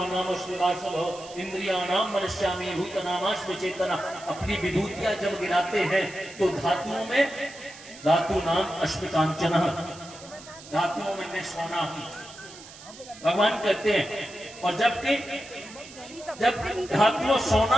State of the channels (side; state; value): right; noise; hiss, 18 dB below the sound